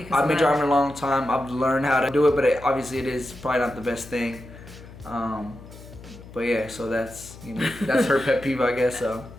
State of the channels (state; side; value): noise; left; hum, 17 dB below the sound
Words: driving a long time. I've learned how to do it, but obviously it is probably not the best thing. But yeah, so that's that's her pet peeve, I guess. So.